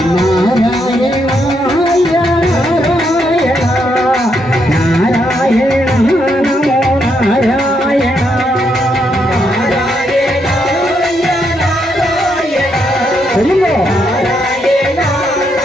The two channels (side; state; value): both; normal; correlation 0.77